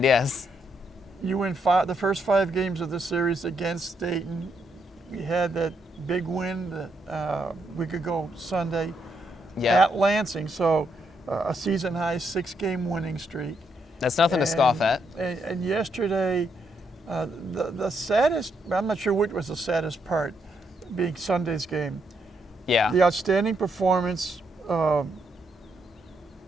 yes. You win the first 5 games of the series against Dayton. We had that big win a week ago Sunday at Lansing. So a season-high 6-game winning streak. That's nothing to scoff at. And yesterday, the saddest, I'm not sure which was the saddest part, being Sunday's game. Yeah. The outstanding performance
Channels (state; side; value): normal; both; correlation 0.77